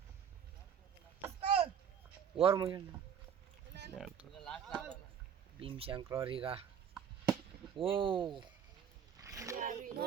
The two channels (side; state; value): left; quieter; 8.1 dB